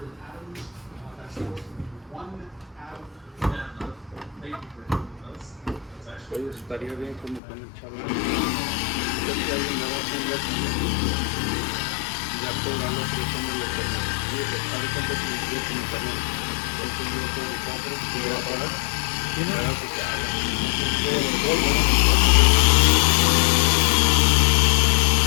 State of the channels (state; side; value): drops out; right; at 7.4 s